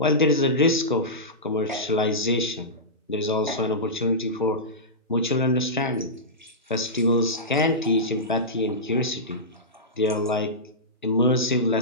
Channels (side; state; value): both; normal; correlation -0.15